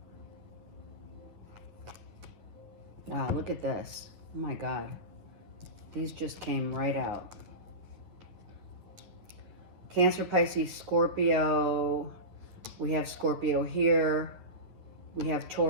Wow, look at this. Oh my God. These just came right out. Cancer, Pisces, Scorpio. We have Scorpio here. We have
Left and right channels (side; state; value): left; late; 9.9 ms